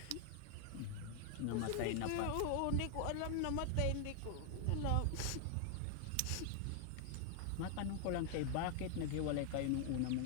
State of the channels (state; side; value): different; both; correlation 0.00